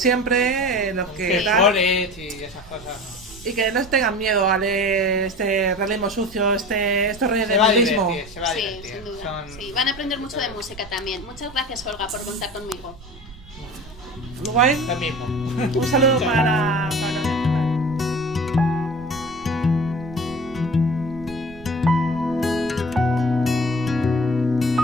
los que tal, y esas cosas, ¿no? Y que no tengan miedo a leer este realismo sucio, estos reyes del realismo. Se va a divertir. Sí, sin duda. Sí, van a aprender mucho de música también. Muchas gracias, Olga, por contar conmigo. guay. Lo mismo. Un saludo para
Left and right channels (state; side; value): noise; right; rumble, 19 dB below the sound